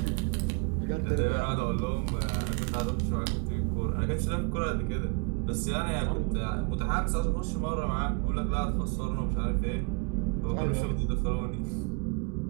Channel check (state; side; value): quieter; left; 33.1 dB